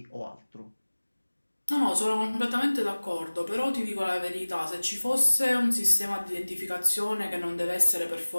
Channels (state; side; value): inverted; both; correlation -1.00